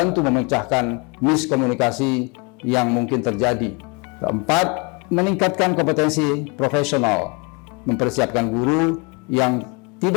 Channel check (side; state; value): right; quieter; 30.8 dB